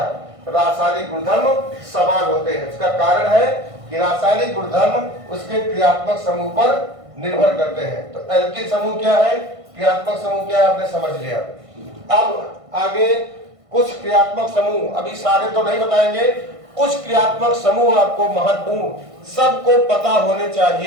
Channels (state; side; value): late; left; 1.5 ms